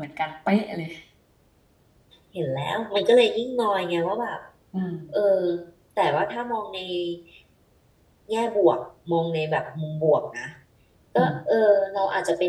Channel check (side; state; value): both; identical; correlation 1.00